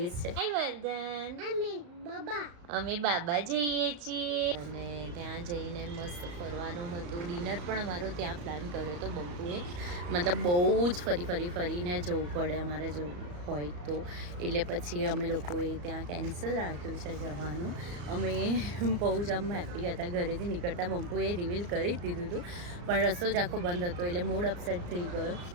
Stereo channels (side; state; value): left; late; 34 ms